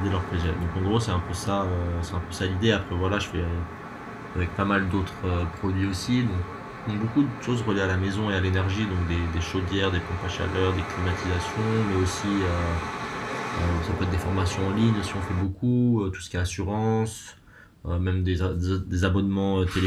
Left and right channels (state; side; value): identical; both; correlation 1.00